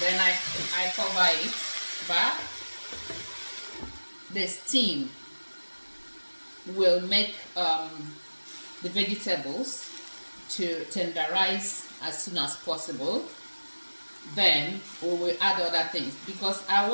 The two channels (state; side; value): inverted; both; correlation -1.00